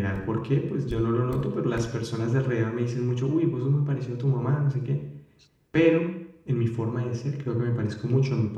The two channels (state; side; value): identical; both; correlation 1.00